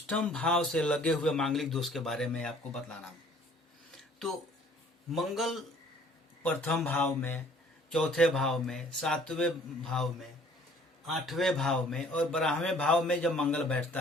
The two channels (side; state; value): both; normal; correlation 0.55